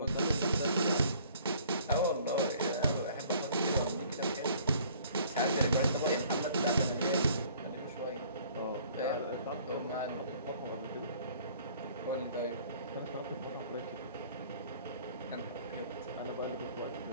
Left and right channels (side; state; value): both; inverted; correlation -0.55